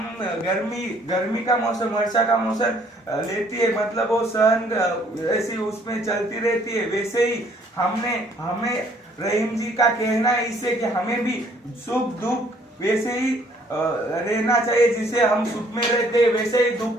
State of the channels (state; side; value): normal; both; correlation 0.62